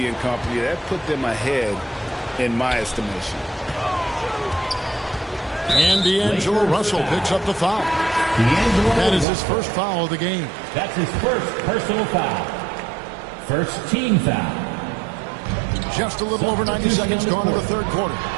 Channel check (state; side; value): drops out; left; at 9.2 s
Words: and company, that put them ahead in my estimation. And D'Angelo Russell picks up the foul. That is his first foul of the game. That's his first personal foul. First team foul. Just a little over 90 seconds gone in the third quarter.